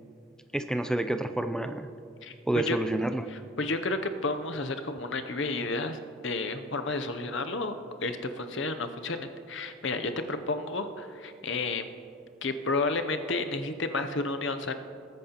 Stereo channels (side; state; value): both; normal; correlation 0.37